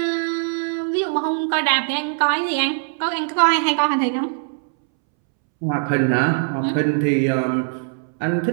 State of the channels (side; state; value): left; silent; 65 dB below the other